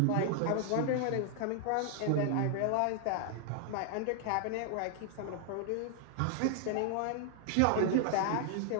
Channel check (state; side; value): different; both; correlation 0.00